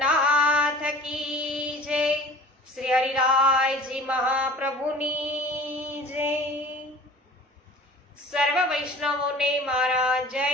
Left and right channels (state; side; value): normal; both; correlation 0.44